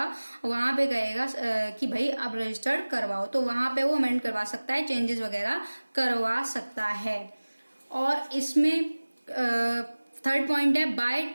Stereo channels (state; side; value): inverted; both; correlation -1.00